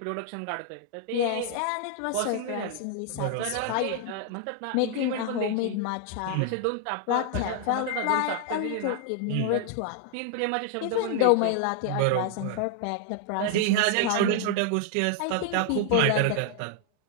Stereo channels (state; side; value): different; both; correlation 0.00